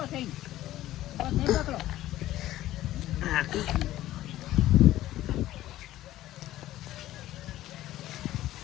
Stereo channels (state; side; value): quieter; right; 14.6 dB